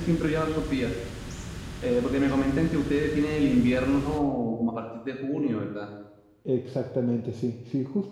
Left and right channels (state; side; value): identical; both; correlation 1.00